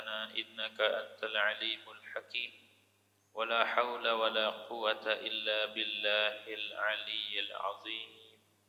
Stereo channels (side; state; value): both; identical; correlation 1.00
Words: innaka antal alimul hakim. Wala haula wala quwwata illa billahil aliyyil azim.